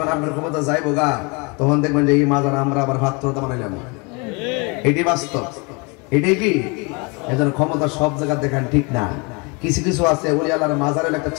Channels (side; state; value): right; quieter; 30.0 dB